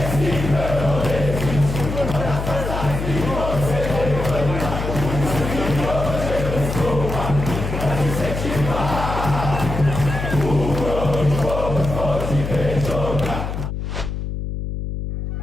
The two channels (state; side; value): noise; left; hum, 4 dB below the sound